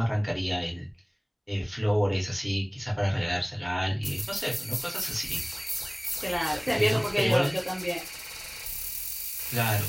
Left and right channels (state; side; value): identical; both; correlation 1.00